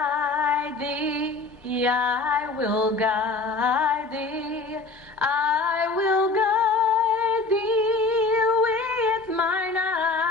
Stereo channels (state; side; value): quieter; right; 3.7 dB